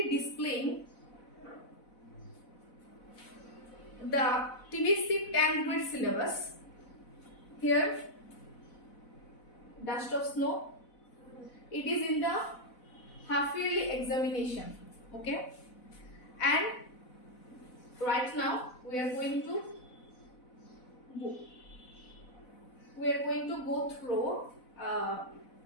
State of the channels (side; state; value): right; late; 4.0 ms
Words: displaying the TBC 10th grade syllabus. Here, Dust of Snow. It is in the half yearly examination. Okay, and right now we are going to go through